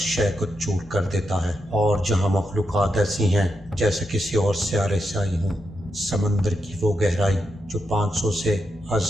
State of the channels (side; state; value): both; normal; correlation 0.84